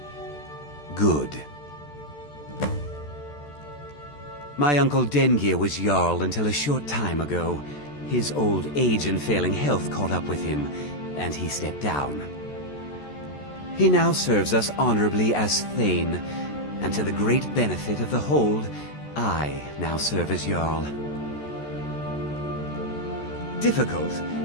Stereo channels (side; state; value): right; late; 14 ms